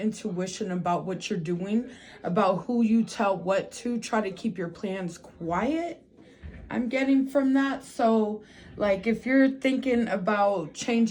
about what you're doing, about who you tell what to. Try to keep your plans quiet, I'm getting from that. So like if you're thinking about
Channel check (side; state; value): both; identical; correlation 1.00